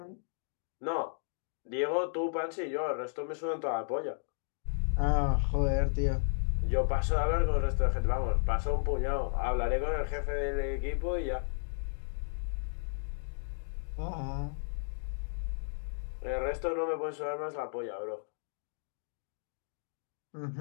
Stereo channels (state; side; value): silent; right; digital silence